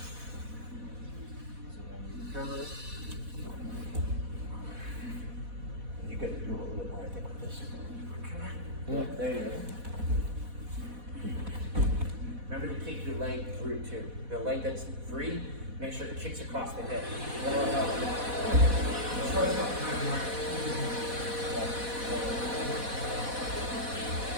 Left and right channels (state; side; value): late; left; 4.1 ms